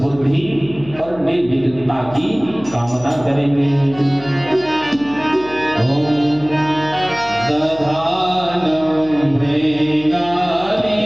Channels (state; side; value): noise; left; hum, 18 dB below the sound